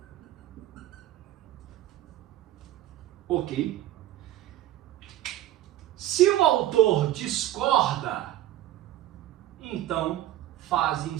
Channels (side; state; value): left; quieter; 13.8 dB